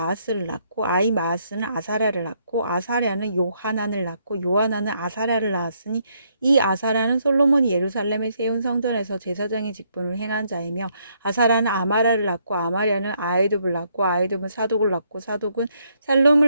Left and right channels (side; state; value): both; inverted; correlation -0.73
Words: 낳고 아이마아스는 아사랴를 낳고 아사랴는 요하난을 낳고 요하난은 아사랴를 낳았으니 이 아사랴는 솔로몬이 예루살렘에 세운 성전에서 제사장의 직분을 행한 자이며 아사랴는 아마랴를 낳고 아마랴는 아이둡을 낳고 아이둡은 사독을 낳고 사독은